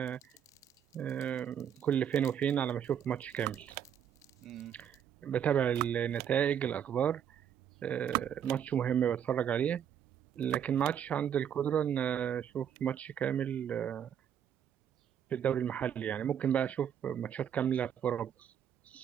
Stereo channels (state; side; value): quieter; left; 9.0 dB